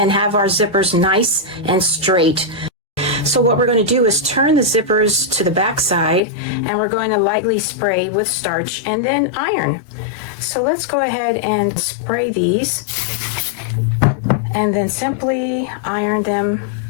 have our zippers nice and straight. So what we're going to do is turn the zippers to the back side, and we're going to lightly spray with starch and then iron. So let's go ahead and spray these and then simply iron them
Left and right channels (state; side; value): drops out; right; at 6.2 s